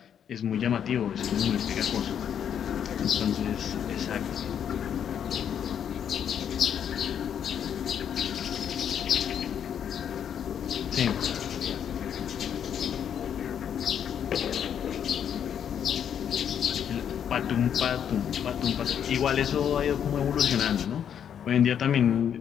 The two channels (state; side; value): quieter; right; 8.7 dB